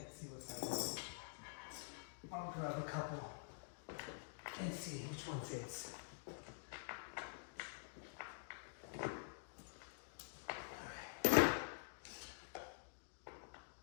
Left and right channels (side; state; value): right; silent; digital silence